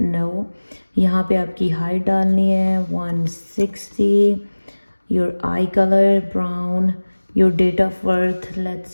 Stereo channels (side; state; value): both; inverted; correlation -1.00